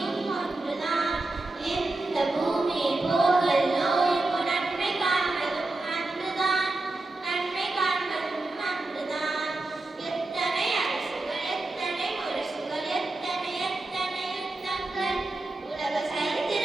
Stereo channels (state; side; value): quieter; left; 3.0 dB